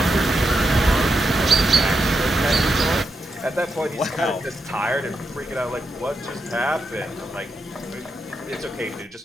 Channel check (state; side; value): normal; both; correlation 0.85